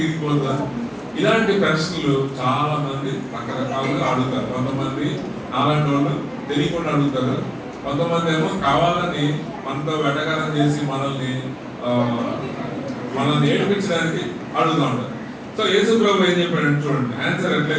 ఇరిగిపోతుందా? ఇలాంటి ప్రశ్నలు చాలా మంది రకరకాలుగా అడుగుతారు. కొంతమంది నాలాంటి వాళ్ళు తెలియకుండా అడుగుతారు, కొంతమంది ఏమో కావాలని మనతో వెటకారం చేసి మనల్ని ఏడిపించడానికి అడుగుతూ ఉంటారు. సో యేసు ప్రభు ఏం చెప్పాడు చూడండి, ఆన్సర్ ఎట్లా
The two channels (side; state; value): both; identical; correlation 1.00